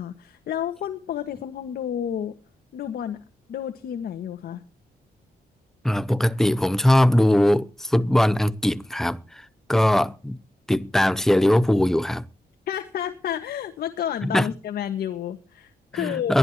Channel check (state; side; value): normal; both; correlation 0.91